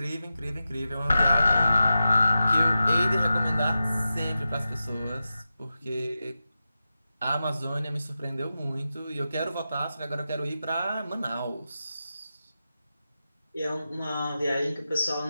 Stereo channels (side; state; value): both; inverted; correlation -0.92